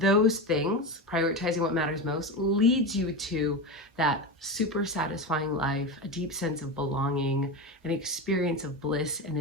things, prioritizing what matters most, leads you to that super satisfying life, a deep sense of belonging, an experience of bliss and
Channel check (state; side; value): normal; both; correlation 0.20